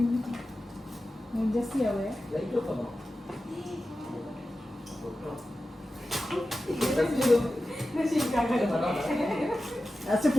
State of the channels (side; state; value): both; normal; correlation 0.93